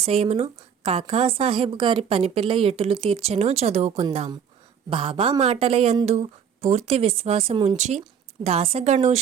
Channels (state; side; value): quieter; left; 7.7 dB